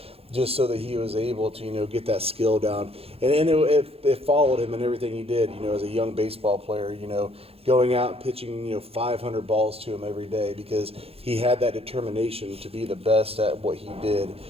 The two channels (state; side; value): late; left; 0.28 ms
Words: just so that he was able to, get that skill down. And it followed him in everything he did, as a young baseball player, going out and pitching, 500 balls to him every day, because he had that determination to be the best at what he did.